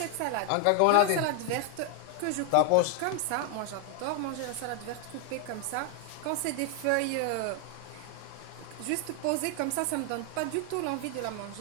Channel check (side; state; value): both; different; correlation 0.00